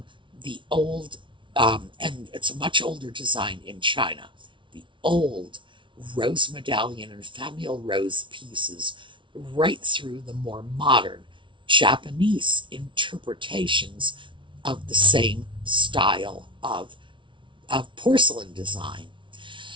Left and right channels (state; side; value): late; left; 0.24 ms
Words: the old, and it's a much older design in China, the old rose medallion and famille rose pieces, right through the more modern Japanese interpretations of the same style of porcelain design.